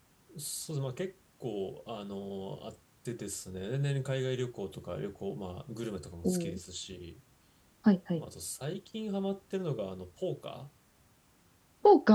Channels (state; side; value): identical; both; correlation 1.00